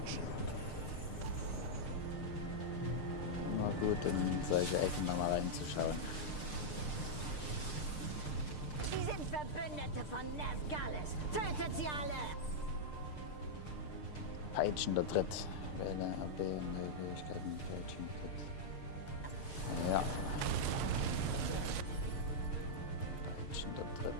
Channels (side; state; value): right; late; 6.6 ms